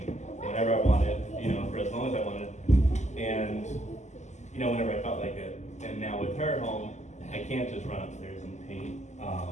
whenever I wanted, you know, for as long as I wanted, and you know, whenever I felt like it. And now with her home, I can't just run upstairs and paint.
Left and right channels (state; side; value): late; right; 0.34 ms